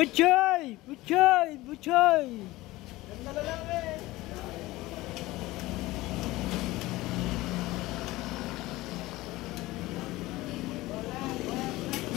Butchoy! Butchoy! Ganda na lang eh.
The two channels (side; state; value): right; quieter; 18.8 dB